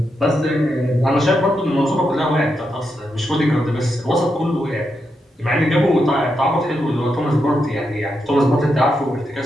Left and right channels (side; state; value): both; normal; correlation 0.84